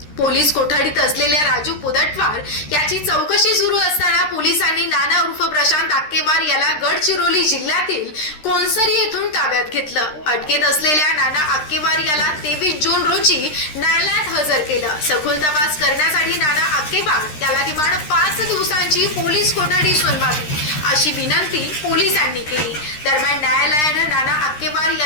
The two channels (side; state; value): right; late; 13 ms